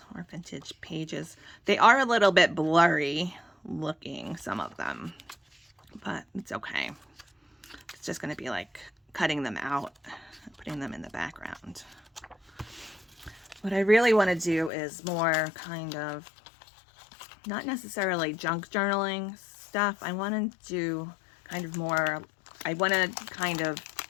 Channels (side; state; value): right; drops out; at 14.7 s